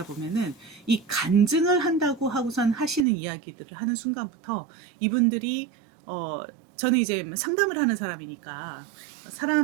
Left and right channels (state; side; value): drops out; left; at 3.1 s